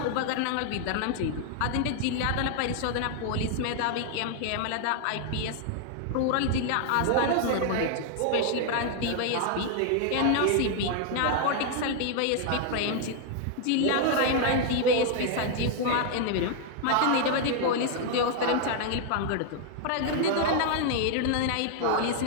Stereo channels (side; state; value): both; different; correlation 0.00